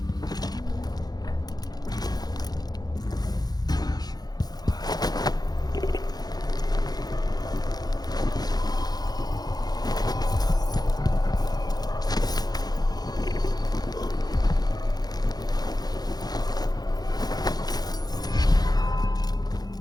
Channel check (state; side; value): late; right; 0.19 ms